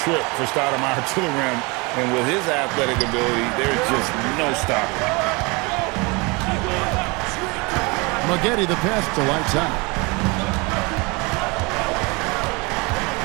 for Stoudemire to the rim. And with his athletic ability, there's just no stopping. Maggette the pass to Lights Out.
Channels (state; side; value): quieter; left; 27.6 dB